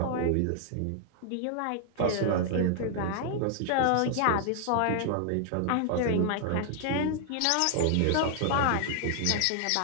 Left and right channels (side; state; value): both; different; correlation 0.00